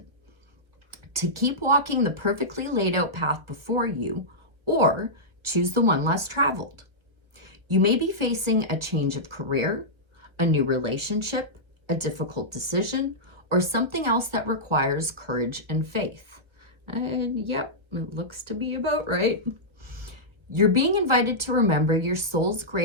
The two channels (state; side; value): late; left; 1.2 ms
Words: to keep walking the perfectly laid out path before you, or choose the one less traveled. You may be facing a change of career, a new relationship, a difficult decision, or something else that requires courage and faith. And yep, it looks to be about right. You're being invited to remember your soul's